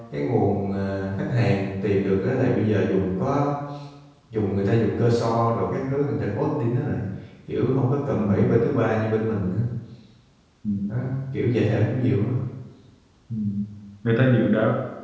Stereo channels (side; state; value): both; identical; correlation 1.00